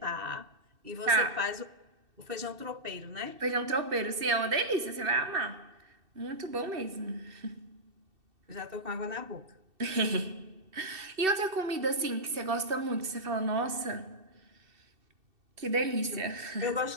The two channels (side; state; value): left; late; 2.7 ms